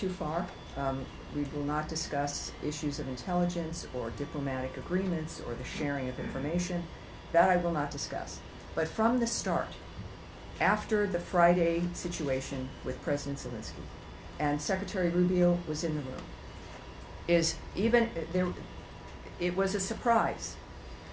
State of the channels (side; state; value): both; identical; correlation 1.00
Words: far. We will not discuss issues of intelligence or diplomatic agreements or the sharing of information. That I will not discuss. But from the start, after the Friday situation with President Zelensky, and Secretary Rubio was in the room, it was a surprise